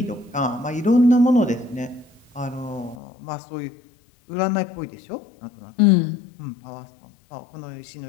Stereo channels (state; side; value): drops out; right; at 3.0 s